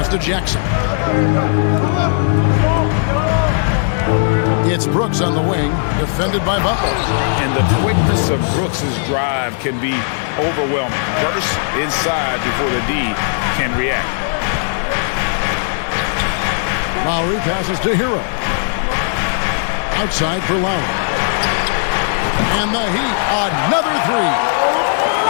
to Jackson. It's Brooks on the wing, defended by Butler. And the quickness of Brooks' drive can be overwhelming. Burst inside before the D can react. Lowry passes to Hero. Outside for Lowry. And the Heat, another three.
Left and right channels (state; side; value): silent; right; digital silence